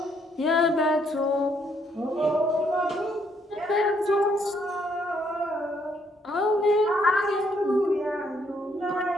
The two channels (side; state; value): both; normal; correlation 0.71